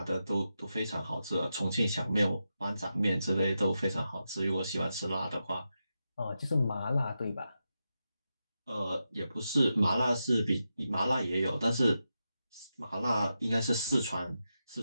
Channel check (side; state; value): both; inverted; correlation -0.88